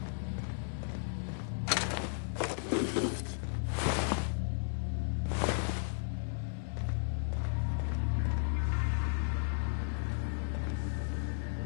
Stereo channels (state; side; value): silent; right; digital silence